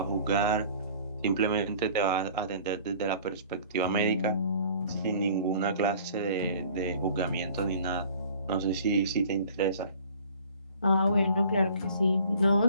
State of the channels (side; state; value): both; inverted; correlation -0.50